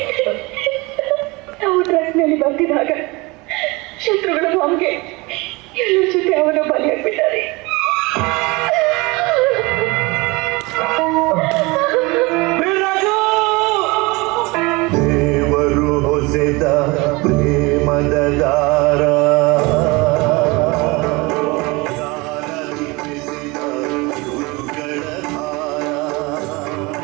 ನಾವು ಟ್ರಕ್ನಲ್ಲಿ ಬರ್ತಿದ್ದಾಗ ಶತ್ರುಗಳ ಬಾಂಬ್ಗೆ ಎಲ್ಲರ ಜೊತೆ ಅವನ ಬಲಿಯಾಗ್ಬಿಟ್ಟಾರೆ. ದೇವರು ಹೊಸೆದ ಪ್ರೇಮದ ದಾರ,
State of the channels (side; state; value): left; quieter; 24.9 dB